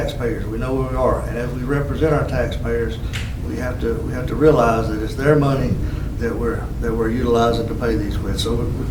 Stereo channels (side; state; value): both; identical; correlation 1.00